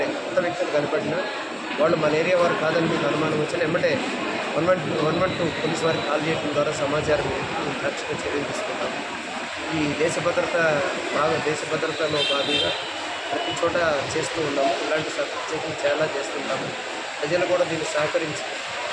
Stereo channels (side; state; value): both; identical; correlation 1.00